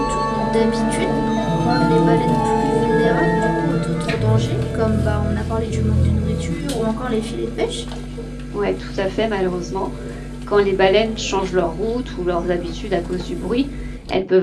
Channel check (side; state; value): both; identical; correlation 1.00